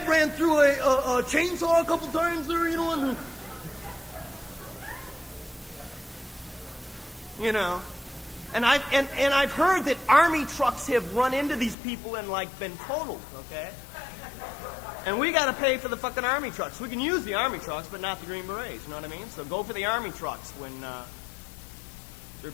ran through a chainsaw a couple times there, you know? And, you know. And I've heard that army trucks have run into these people and like been totaled, okay? And we got to pay for the fucking army trucks. We can use the army trucks, but not the Green Berets. You know what I mean? So go for the army trucks when they're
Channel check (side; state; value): right; drops out; at 11.8 s